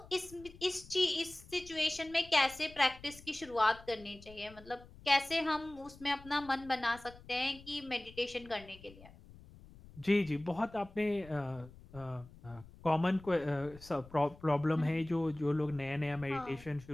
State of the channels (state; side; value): noise; left; rumble, 20 dB below the sound